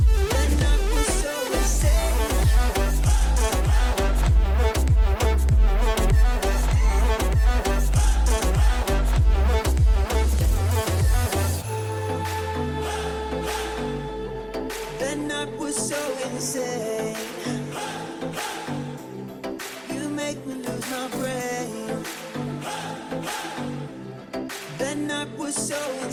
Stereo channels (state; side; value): identical; both; correlation 1.00